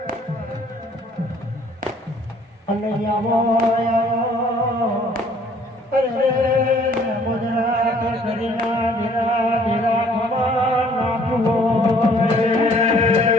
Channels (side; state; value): both; normal; correlation 0.59